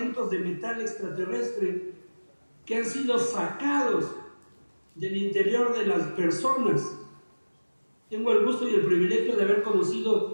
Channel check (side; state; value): both; inverted; correlation -1.00